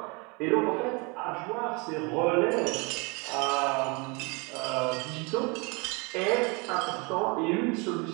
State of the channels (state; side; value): quieter; left; 29.8 dB